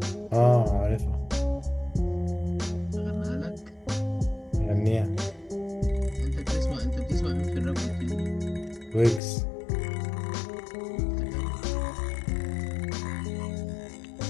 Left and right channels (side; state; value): right; drops out; at 9.2 s